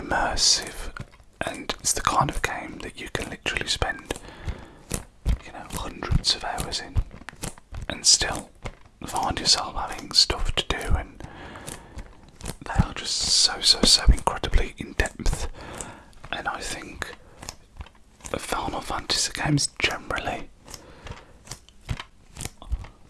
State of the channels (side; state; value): both; identical; correlation 1.00